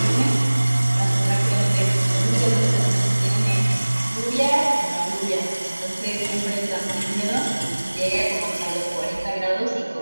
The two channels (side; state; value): both; inverted; correlation -1.00